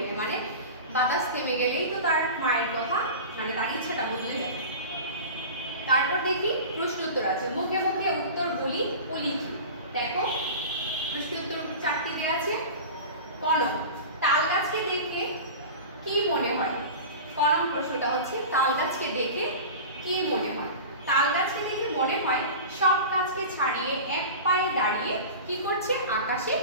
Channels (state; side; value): inverted; both; correlation -0.33